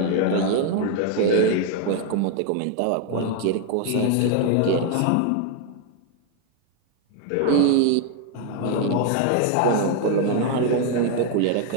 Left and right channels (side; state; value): both; different; correlation 0.01